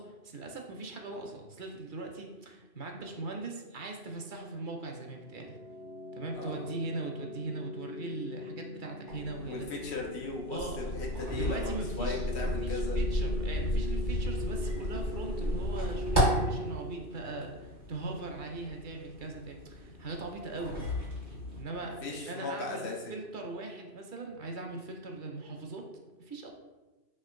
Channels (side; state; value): right; late; 2.3 ms